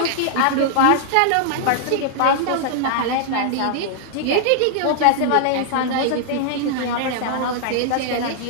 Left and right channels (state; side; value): different; both; correlation -0.01